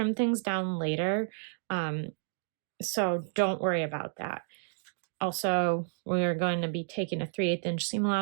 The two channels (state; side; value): silent; left; digital silence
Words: things down later, so don't worry about that. Also, we're going to be taking a 3/8 inch seam